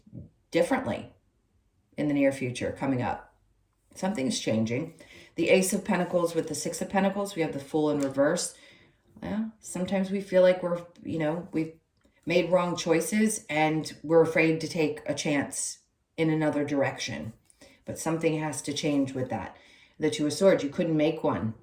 differently in the near future coming up. Something's changing. The Ace of Pentacles with the Six of Pentacles, we have the Fool in reverse. Well, sometimes we feel like we've made wrong choices and we're afraid to take a chance in another direction. But something has to change with that. The Two of Swords, you couldn't make one.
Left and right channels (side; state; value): both; identical; correlation 1.00